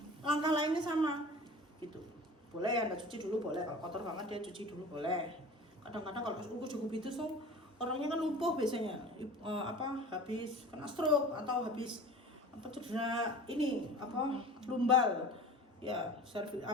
Langkah lainnya sama. Gitu. Boleh Anda cuci dulu, boleh. Kalau kotor banget dia cuci dulu, boleh. Kadang-kadang kalau cukup itu orangnya kan lumpuh biasanya, habis kena stroke atau habis cedera ini lumbal, ya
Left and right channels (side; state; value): both; normal; correlation 0.39